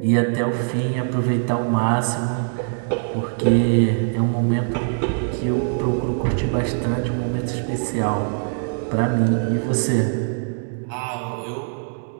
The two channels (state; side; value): silent; left; digital silence